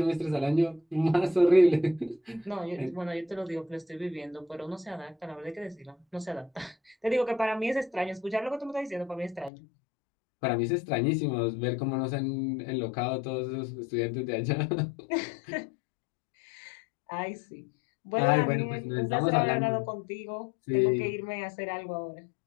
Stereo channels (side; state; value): right; drops out; at 9.5 s